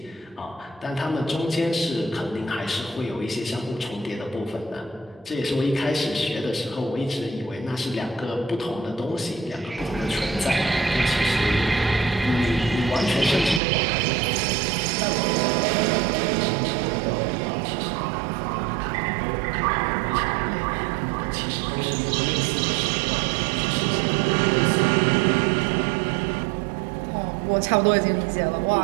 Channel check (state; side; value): drops out; left; at 13.6 s